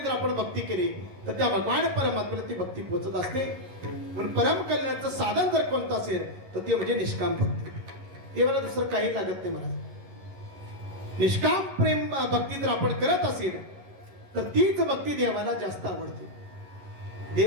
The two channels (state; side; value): late; left; 11 ms